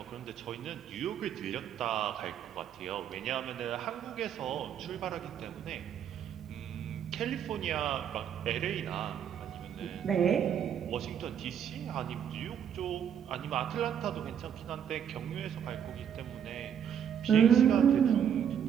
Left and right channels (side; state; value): left; quieter; 8.7 dB